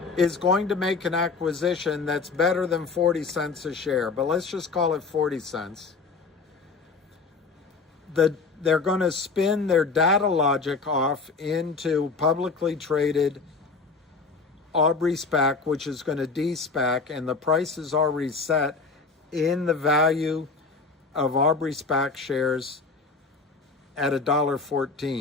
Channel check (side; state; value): right; quieter; 4.3 dB